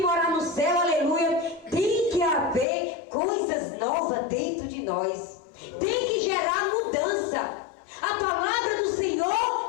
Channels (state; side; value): drops out; right; at 2.7 s